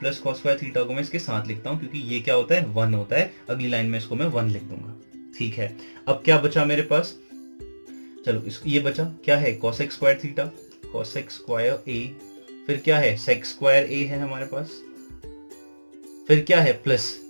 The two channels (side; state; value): both; inverted; correlation -1.00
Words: cos square theta को मैं इसके साथ लिखता हूँ क्योंकि ये क्या होता है 1 होता है। अगली लाइन में इसको मैं 1 लिख दूंगा। ठीक है, अब क्या बचा मेरे पास, चलो ये बचा क्या है cosec square theta, cosec square A, फिर क्या है सेक स्क्वायर ए है हमारे पास, फिर क्या है plus